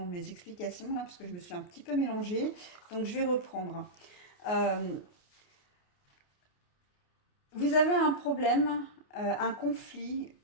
mes explications là, parce que je me suis un petit peu mélangée. Donc, je vais reprendre. Euh, Vous avez un problème, un conflit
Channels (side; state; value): right; late; 28 ms